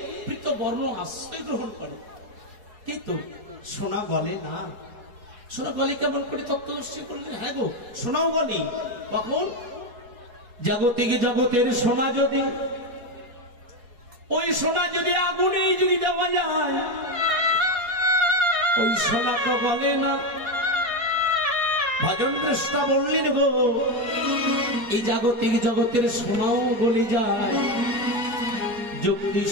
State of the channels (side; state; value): left; late; 4.7 ms